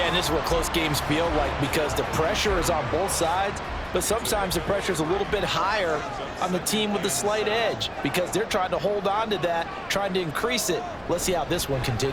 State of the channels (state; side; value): identical; both; correlation 1.00